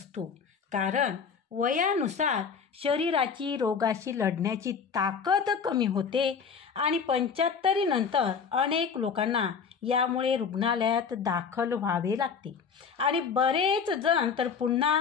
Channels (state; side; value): quieter; right; 6.1 dB